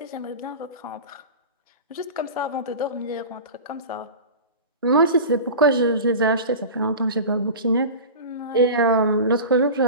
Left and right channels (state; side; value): inverted; both; correlation -0.31